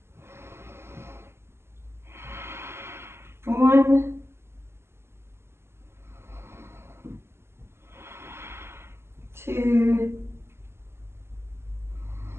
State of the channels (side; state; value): left; late; 0.12 ms